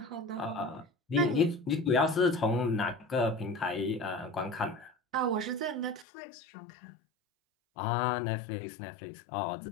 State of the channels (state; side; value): drops out; right; at 6.1 s